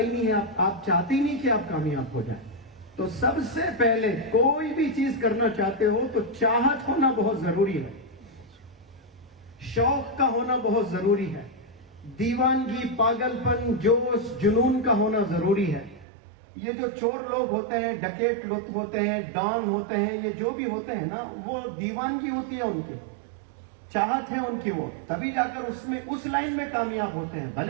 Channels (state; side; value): drops out; left; at 16.1 s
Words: نہیں ہے، آپ چاہتے ہی نہیں کہ آپ کامیاب ہو جائیں۔ تو سب سے پہلے کوئی بھی چیز کرنا چاہتے ہو تو چاہت ہونا بہت ضروری ہے، شوق کا ہونا بہت ضروری ہے، دیوانگی، پاگل پن، جوش، جنون کا ہونا ضروری ہے۔ یہ جو چور لوگ ہوتے ہیں، ڈکیٹ لوگ ہوتے ہیں، ڈان ہوتے ہیں، یہ جو بھی ہوتے ہیں نا، وہ دیوانگی ہوتی ہے ان کی، چاہت ہے ان کی، وہ تبھی جا کر اس لائن میں کامیاب ہوتے ہیں۔